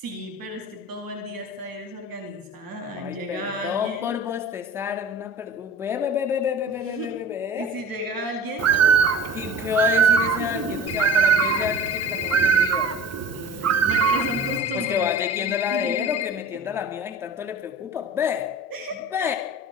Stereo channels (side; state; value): both; normal; correlation 0.37